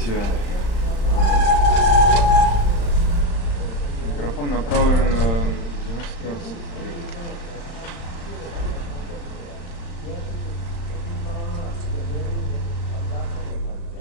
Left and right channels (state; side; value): late; right; 35 ms